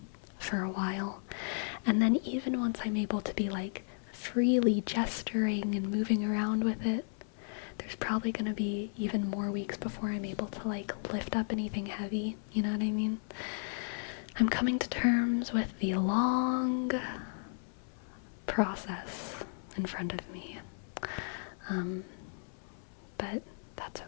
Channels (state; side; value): silent; right; 55 dB below the other